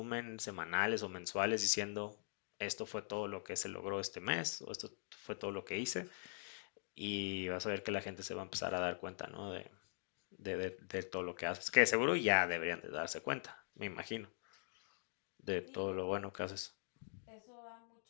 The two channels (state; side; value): silent; right; digital silence